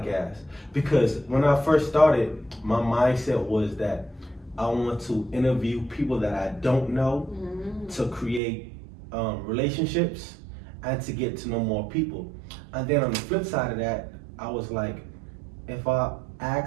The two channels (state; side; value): drops out; left; at 8.4 s